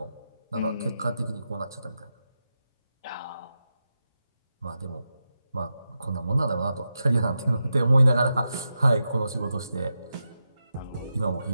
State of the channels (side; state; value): both; inverted; correlation -0.88